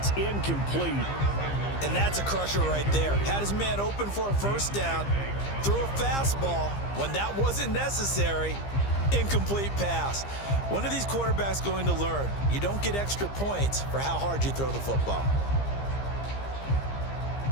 incomplete. And that's a crusher right there. Had his man open for a first down, threw a fastball when that wasn't necessary, incomplete pass. One of these quarterbacks going to learn, you don't get extra points for how hard you throw the football.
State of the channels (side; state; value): right; late; 15 ms